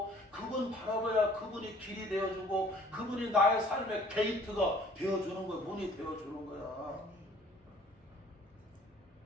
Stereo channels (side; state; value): both; normal; correlation 0.54